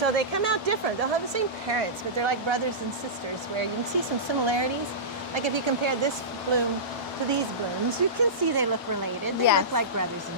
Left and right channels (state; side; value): normal; both; correlation -0.19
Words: they come out different. They'll have the same parents, but they're like brothers and sisters, where you can see some similarities. Like if you compare this bloom to these blooms, you can see they look related. They Yes. look like brothers